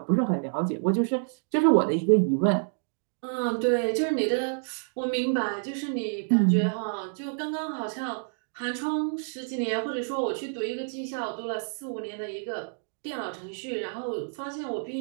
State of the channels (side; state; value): left; silent; 59 dB below the other